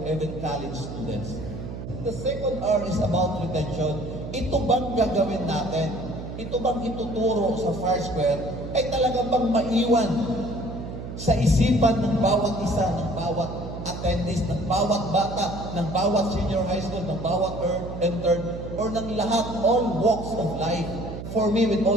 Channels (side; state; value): right; noise; hum, 8 dB below the sound